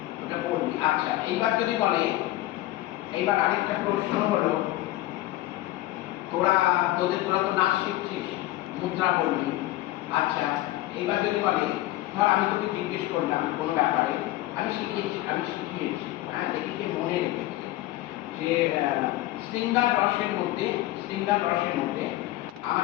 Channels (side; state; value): right; quieter; 16.6 dB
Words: ওটা পড়বি। আচ্ছা, এইবার যদি বলে, এইবার আরেকটা প্রশ্ন হলো, তোরা তো নাচ শিখছিস, মুদ্রা বলবি। আচ্ছা, এইবার যদি বলে, ধর আমি তোকে জিজ্ঞেস করলাম কোনো ব্যাপারে, আমি শিখিয়েছি, হ্যাঁ, দেখি যে মনে রেখেছে যে শৃঙ্গার রসের মধ্যে